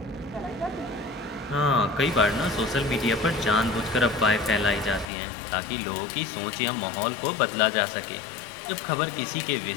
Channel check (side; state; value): right; drops out; at 5.1 s